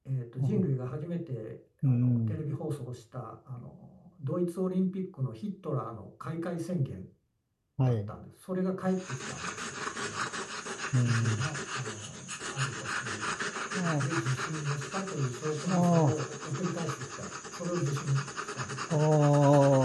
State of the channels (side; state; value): both; identical; correlation 1.00